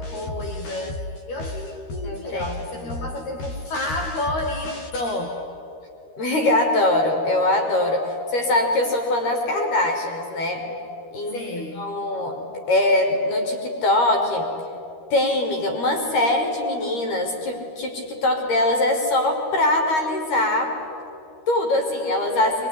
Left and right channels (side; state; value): right; late; 13 ms